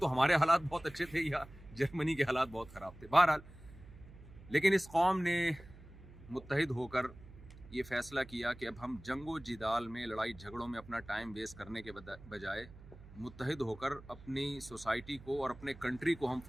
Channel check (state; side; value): noise; right; hum, 19 dB below the sound